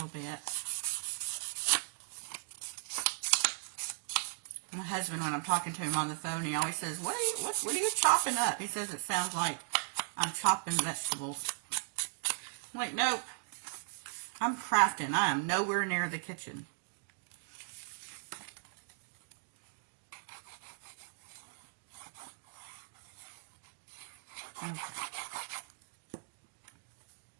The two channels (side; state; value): left; silent; digital silence